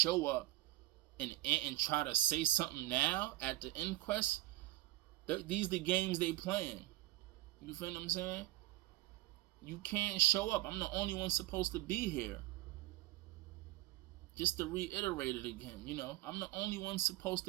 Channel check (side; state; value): left; quieter; 18.0 dB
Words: up and try to say something now at the inquest? These are the games they playing. You feel what I'm saying? You can't show up. I'm the only one supposed to be here. Just to reiterate it again, you know, I'm the only one supposed